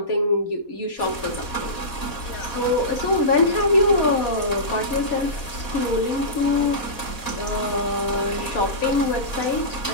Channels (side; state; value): right; late; 4.1 ms